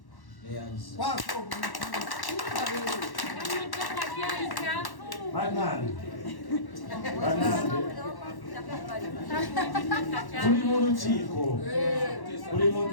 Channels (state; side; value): late; right; 1.1 ms